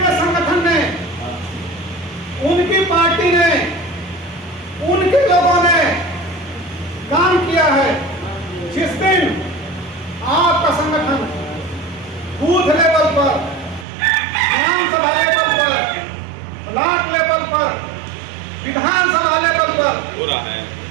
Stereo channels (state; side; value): drops out; left; at 13.9 s